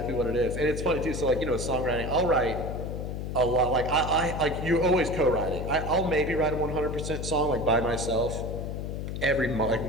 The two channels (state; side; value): noise; left; hum, 5 dB below the sound